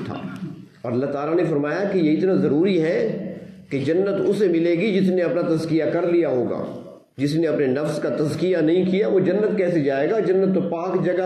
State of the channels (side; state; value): both; identical; correlation 1.00